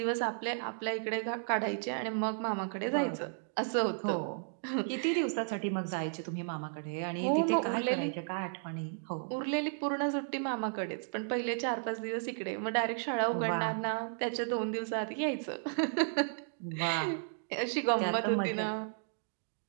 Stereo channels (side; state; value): left; silent; digital silence